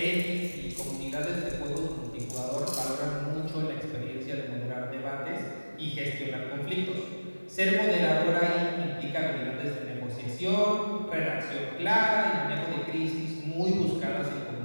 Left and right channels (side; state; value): both; inverted; correlation -1.00